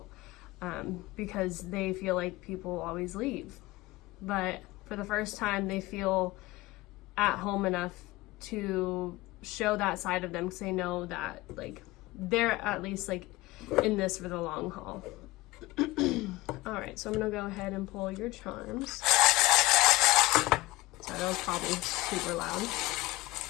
because they feel like people always leave. But for the first time, they feel at home enough to show that side of them, because they know that like they're at least like in this for the long haul. All right, so I'm gonna go ahead and pull your charms. So that was probably super loud.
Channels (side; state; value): right; quieter; 19.8 dB